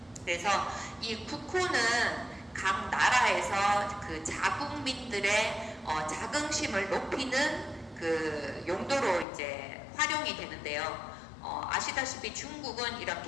그래서 이 국호는 각 나라에서 그 자국민들의 자긍심을 높이는 그 용도로 이제 활용이 되는데요. 아시다시피 중국은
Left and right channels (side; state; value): right; drops out; at 9.2 s